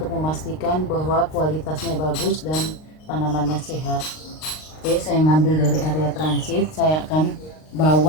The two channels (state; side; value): late; right; 39 ms